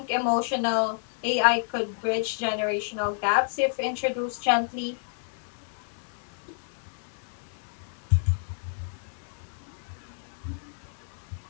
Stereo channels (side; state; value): right; silent; 57 dB below the other